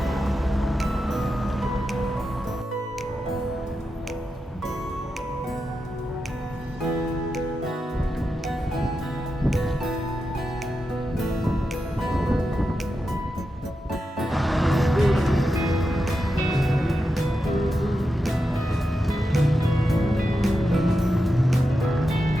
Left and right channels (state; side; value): normal; both; correlation 0.88